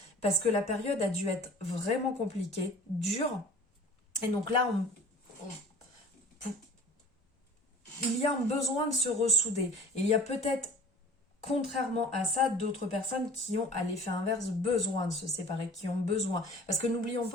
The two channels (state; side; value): normal; both; correlation 0.43